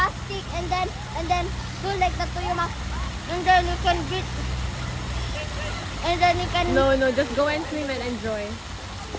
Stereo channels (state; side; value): identical; both; correlation 1.00